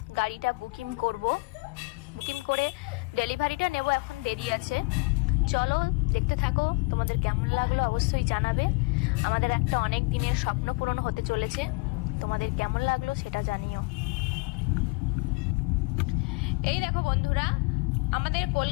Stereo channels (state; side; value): quieter; right; 28.9 dB